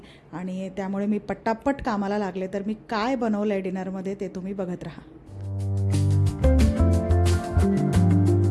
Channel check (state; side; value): identical; both; correlation 1.00